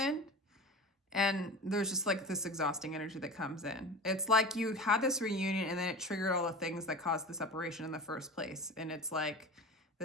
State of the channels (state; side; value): normal; both; correlation 0.32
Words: and there's just like this exhausting energy that comes in. It's like you had this reunion and then it triggered all the things that caused the separation in the first place. And it's like